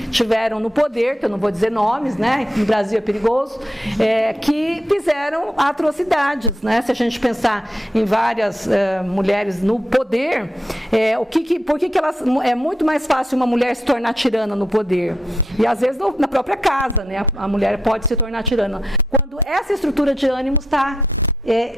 tiveram no poder, que eu não vou dizer nomes, né? No Brasil é perigoso, que fizeram atrocidades, né? Se a gente pensar em várias mulheres no poder, por que elas, é muito mais fácil uma mulher se tornar tirana no poder? E às vezes na própria casa, né? A mulher pode se tornar tirana. Quando essa estrutura de ânimo está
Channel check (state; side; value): normal; both; correlation 0.81